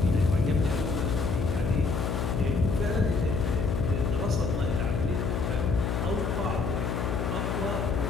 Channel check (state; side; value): noise; left; hum, 1 dB below the sound